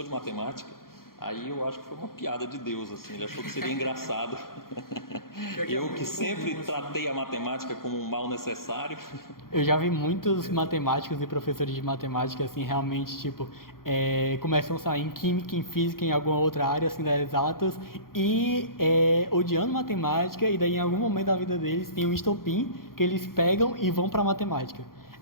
de matemática, aí eu acho que foi uma piada de Deus, assim, ele achou que seria engraçado. Eu que sempre tratei a matemática como um mal necessário. Eu já vi muitos matemáticos e professores de matemática, assim, realmente, tipo, começam a sair em química, em física, em alguma outra área, assim, das exatas, e odiando matemática, e daí em algum momento da vida deles tem um estopim que eles pegam e vão para matemática.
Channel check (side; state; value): right; late; 0.92 ms